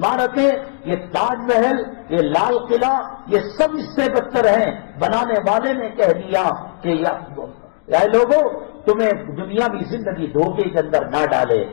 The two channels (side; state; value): right; silent; digital silence